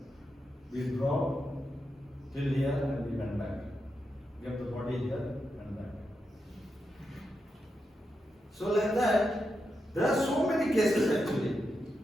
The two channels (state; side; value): normal; both; correlation 0.86